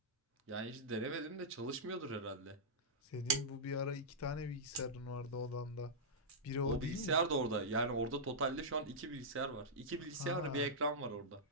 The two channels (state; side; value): normal; both; correlation -0.11